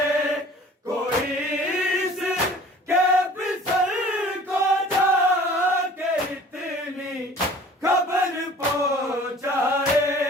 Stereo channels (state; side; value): normal; both; correlation 0.48